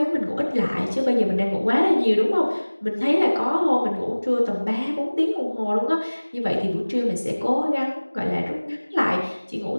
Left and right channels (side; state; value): both; inverted; correlation -1.00